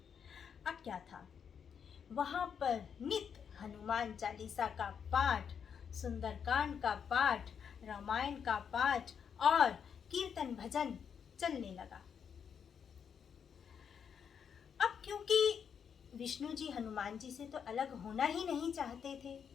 अब क्या था, वहां पर नित्य हनुमान चालीसा का पाठ, सुंदरकांड का पाठ, रामायण का पाठ और कीर्तन भजन चलने लगा। अब क्योंकि विष्णु जी हनुमान जी से तो अलग होना ही नहीं चाहते थे,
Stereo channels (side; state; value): right; quieter; 7.3 dB